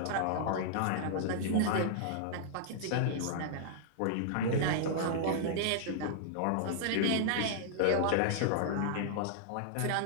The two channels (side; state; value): both; different; correlation -0.01